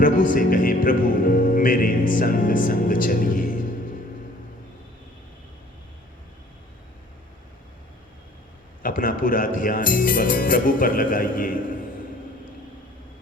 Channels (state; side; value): normal; both; correlation 0.53